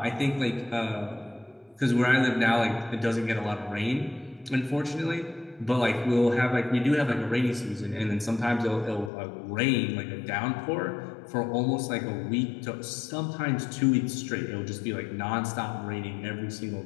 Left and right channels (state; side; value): drops out; right; at 9.1 s